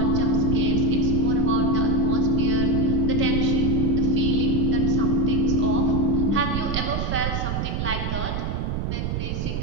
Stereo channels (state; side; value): noise; right; rumble, 2 dB below the sound